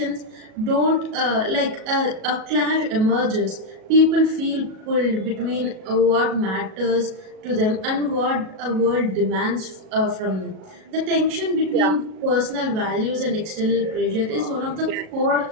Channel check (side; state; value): left; late; 37 ms